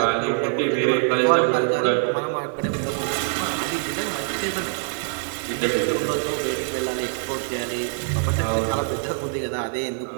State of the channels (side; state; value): left; silent; 56 dB below the other